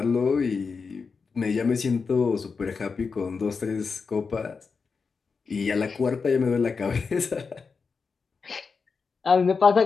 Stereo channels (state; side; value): quieter; right; 5.1 dB